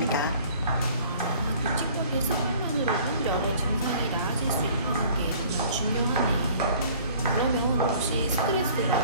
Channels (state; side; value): inverted; both; correlation -0.52